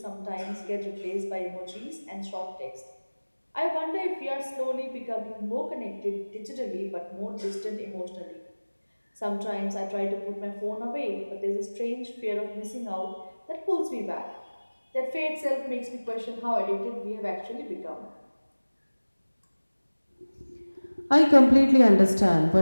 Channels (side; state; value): both; inverted; correlation -1.00